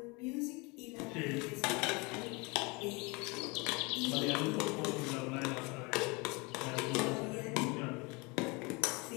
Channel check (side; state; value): right; quieter; 27.6 dB